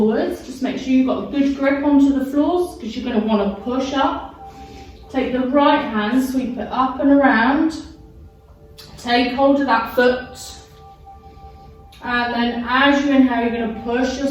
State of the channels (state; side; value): identical; both; correlation 1.00